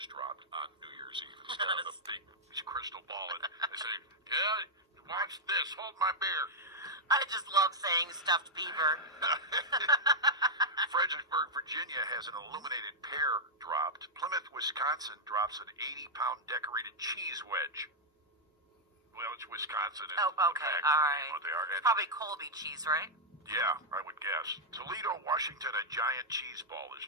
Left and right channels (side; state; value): both; normal; correlation -0.04